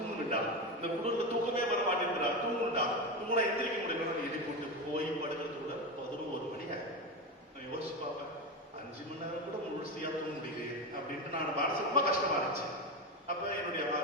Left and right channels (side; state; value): both; normal; correlation 0.17